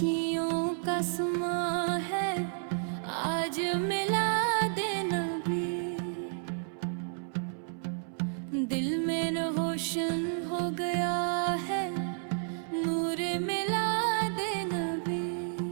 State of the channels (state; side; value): silent; left; 57 dB below the other